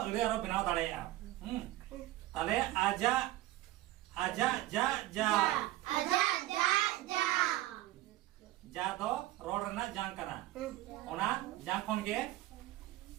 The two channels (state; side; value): quieter; left; 16.1 dB